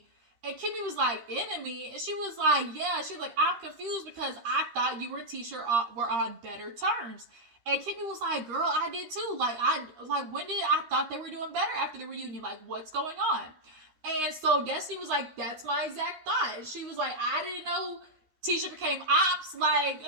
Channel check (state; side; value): late; left; 13 ms